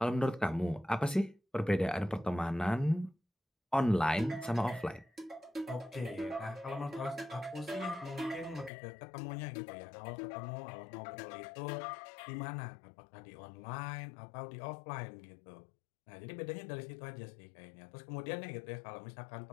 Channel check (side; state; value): right; drops out; at 8.7 s